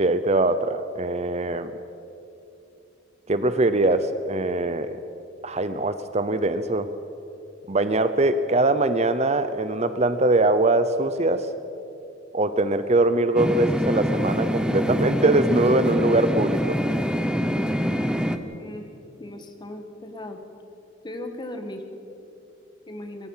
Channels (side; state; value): both; normal; correlation 0.39